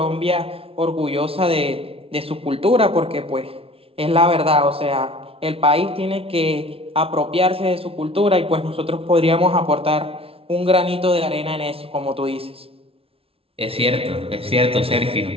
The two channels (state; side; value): late; left; 0.27 ms